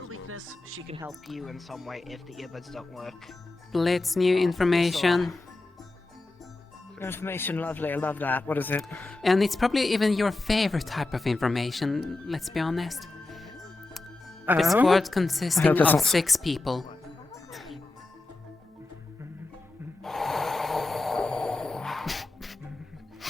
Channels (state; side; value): quieter; right; 3.1 dB